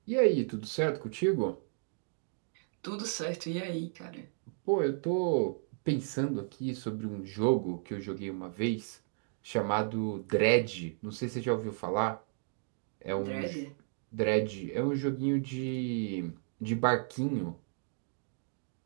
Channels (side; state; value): left; silent; digital silence